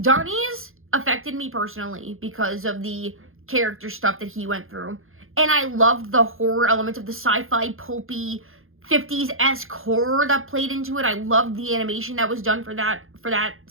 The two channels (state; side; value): late; left; 0.60 ms